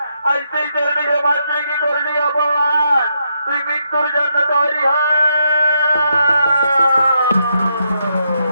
আজ তুই চরণে জমা তুই কি করলি অপমান? তুই মৃত্যুর জন্য তৈরি হয়।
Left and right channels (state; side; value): inverted; both; correlation -0.79